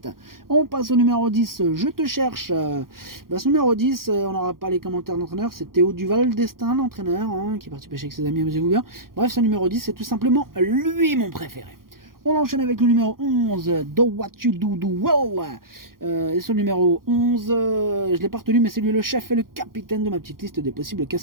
On passe au numéro 10, Je te cherche. Ce numéro 10, on n'aura pas les commentaires d'entraîneur, c'est Théo Duval d'Estaing, l'entraîneur, hein, qui est parti pêcher avec ses amis, amusez-vous bien. Bref, ce numéro 10, c'est tout simplement lui mon préféré. On enchaîne avec le numéro 11, Do What You Do Well. Et ce numéro 11, je ne l'ai pas retenu, mais c'est lui le chef et le capitaine de ma petite liste des possibles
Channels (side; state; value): left; late; 0.92 ms